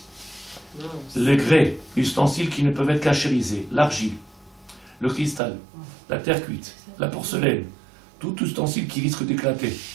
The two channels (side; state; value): left; drops out; at 5.4 s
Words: les grès, ustensiles qui ne peuvent être cachérisés, l'argile, le cristal, la terre cuite, la porcelaine, tout ustensile qui risque d'éclater.